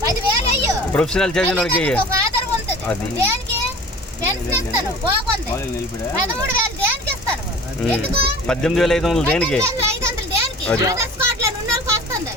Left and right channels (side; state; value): both; normal; correlation 0.42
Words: 10,000 అయ్యో, ప్రొఫెషనల్ చదివినోడికి ఆధారం ఉంటుంది. దేనికి పెన్షన్ ఇస్తాను బాగుంది, 13,000 దేనికి ఇస్తాను? ఎందుకు 18,500 దేనికి? 500 దేనికి? ఆధార్ స్పాట్ లో ఉన్నోళ్ళకి వస్తుంది.